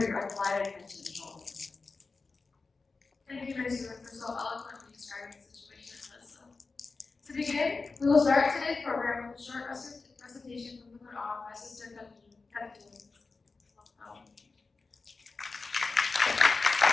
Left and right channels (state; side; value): quieter; right; 4.1 dB